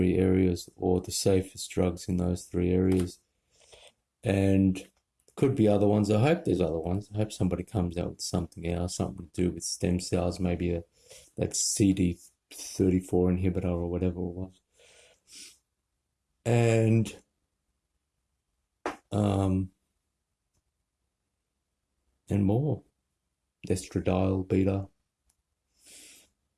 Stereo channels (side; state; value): both; identical; correlation 1.00